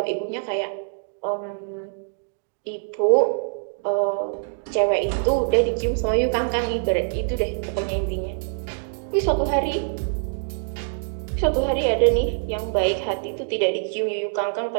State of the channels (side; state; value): left; silent; digital silence